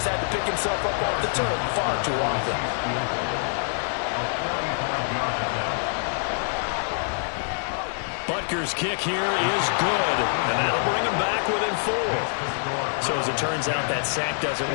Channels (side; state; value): right; silent; digital silence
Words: had to pick himself up off the turf far too often. Butker's kick here is good, and that'll bring him back within 4. So as it turns out, that sack doesn't